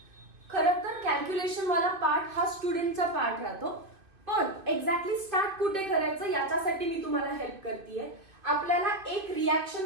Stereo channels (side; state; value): left; late; 2.5 ms